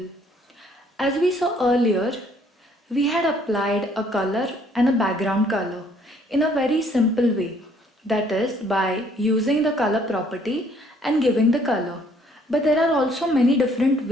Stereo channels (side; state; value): both; normal; correlation 0.63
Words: As we saw earlier, we had applied a color and a background color in a very simple way, that is by using the color property and giving the color. But there are also many different